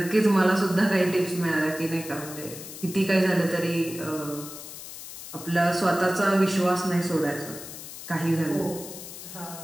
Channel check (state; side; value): noise; left; hiss, 12 dB below the sound